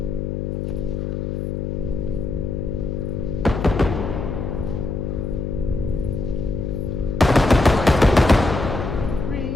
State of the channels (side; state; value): left; noise; hum, 3 dB below the sound